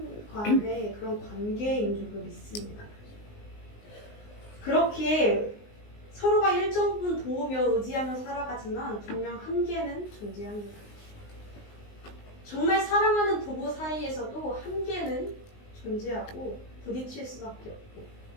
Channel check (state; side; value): late; right; 19 ms